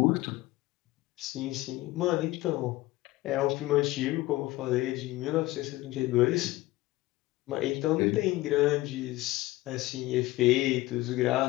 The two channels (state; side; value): quieter; right; 18.4 dB